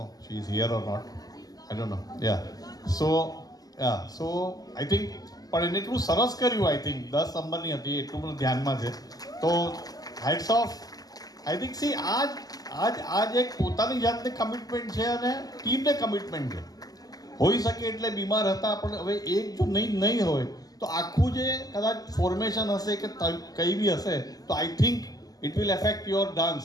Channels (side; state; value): right; late; 0.18 ms